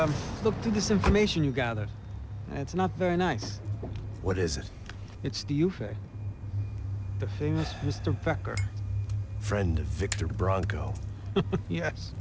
looked through this information you gathered. It's not very nice. What is it? It's the Ufe. The famous Mr. Becker. Friend of Victor Bronco. Yes.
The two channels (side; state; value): both; identical; correlation 1.00